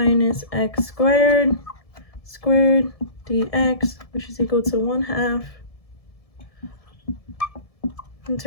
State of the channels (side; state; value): right; late; 1.7 ms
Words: x squared dx, which is equal to 1/2